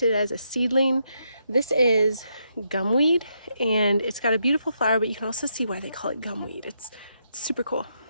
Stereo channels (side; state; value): both; inverted; correlation -0.79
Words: it as a seedling. This is gumweed, and it's got a beautiful flower, but you can also see why they call it gumweed. It's super cool.